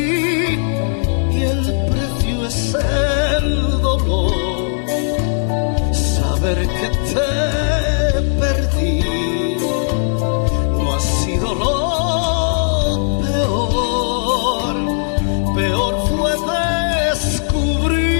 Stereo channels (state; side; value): silent; right; digital silence